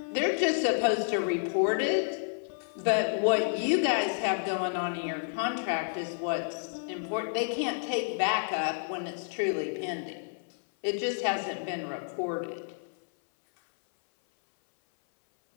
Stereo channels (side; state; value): right; silent; 58 dB below the other